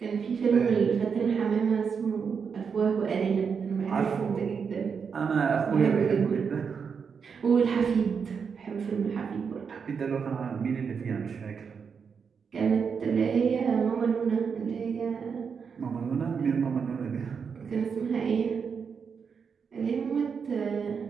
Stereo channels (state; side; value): quieter; left; 6.2 dB